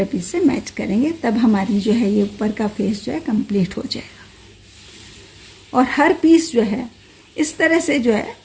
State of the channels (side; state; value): both; identical; correlation 1.00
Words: पीस से मैच करेंगे, तब हमारी जो है ये ऊपर का फेस जो है कंप्लीट हो जाएगा। और हर पीस जो है इस तरह से जो है